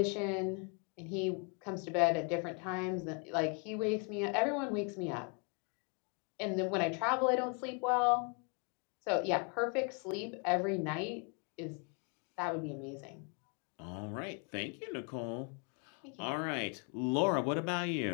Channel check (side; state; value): right; quieter; 36.1 dB